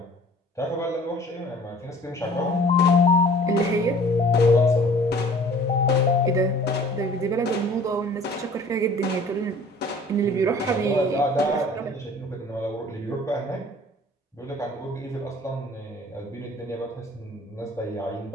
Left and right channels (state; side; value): normal; both; correlation 0.50